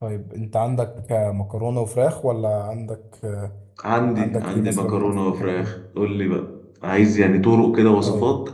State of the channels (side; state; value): both; identical; correlation 1.00